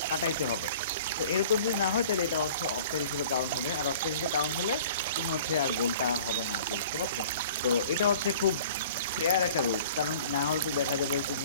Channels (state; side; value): inverted; both; correlation -0.47